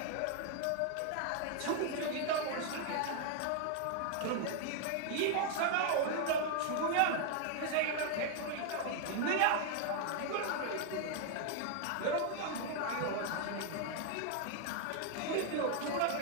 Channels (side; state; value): both; different; correlation 0.00